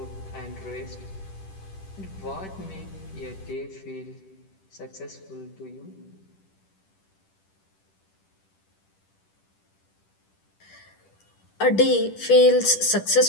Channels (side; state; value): right; late; 10 ms